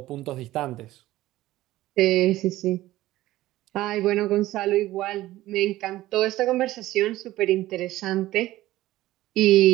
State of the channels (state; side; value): quieter; left; 16.0 dB